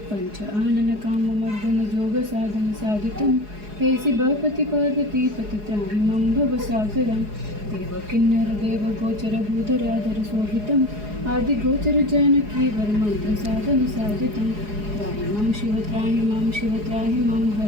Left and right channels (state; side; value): late; left; 4.8 ms